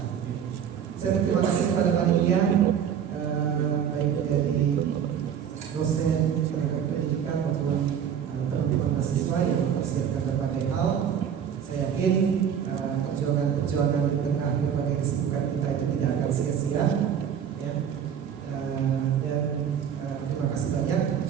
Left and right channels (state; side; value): quieter; left; 8.5 dB